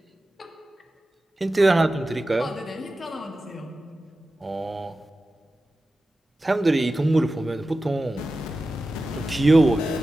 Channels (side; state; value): both; normal; correlation 0.94